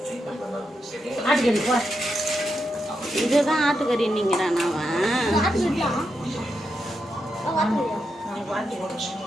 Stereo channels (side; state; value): both; normal; correlation 0.85